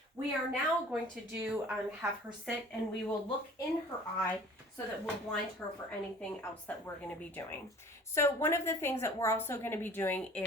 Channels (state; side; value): normal; both; correlation 0.48